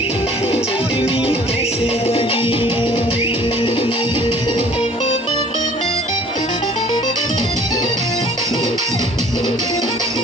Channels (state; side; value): normal; both; correlation 0.52